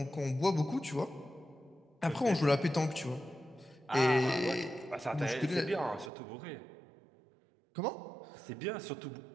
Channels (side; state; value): left; drops out; at 6.1 s